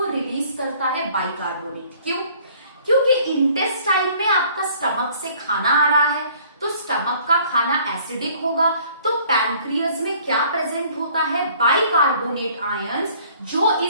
रिलीज करता है बाइकार्बोनेट। क्यों, क्योंकि इंटेस्टाइन में आपका स्टमक से खाना आ रहा है, तो स्टमक का खाना एसिडिक होगा, तो पैनक्रियस में क्या प्रेजेंट होता है, बाइकार्बोनेट आयंस, जो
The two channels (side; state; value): both; inverted; correlation -0.56